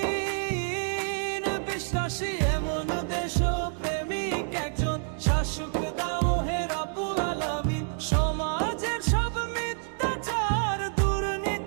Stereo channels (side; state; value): left; silent; 59 dB below the other